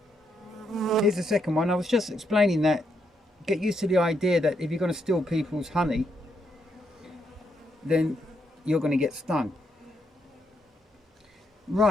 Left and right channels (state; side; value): normal; both; correlation 0.78